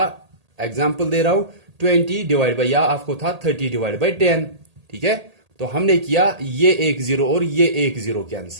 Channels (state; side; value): late; left; 1.8 ms